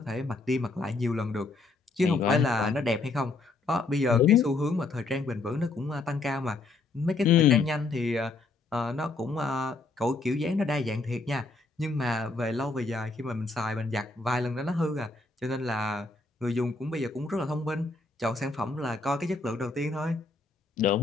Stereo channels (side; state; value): right; quieter; 3.6 dB